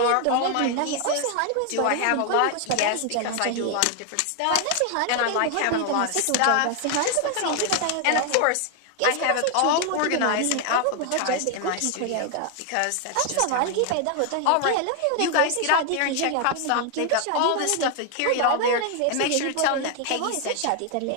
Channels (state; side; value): different; both; correlation 0.00